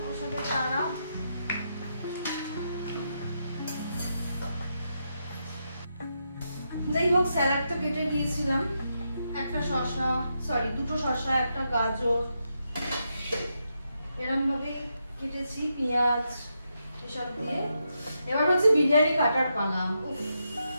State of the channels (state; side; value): inverted; both; correlation -0.83